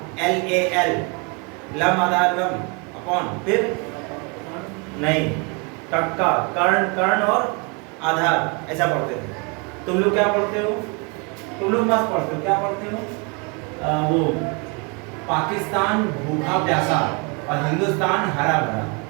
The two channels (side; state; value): left; quieter; 32.4 dB